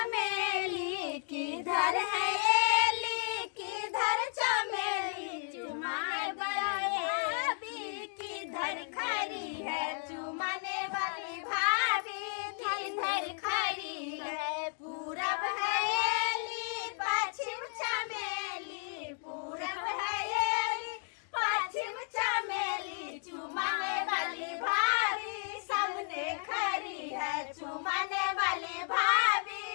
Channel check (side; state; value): right; silent; 55 dB below the other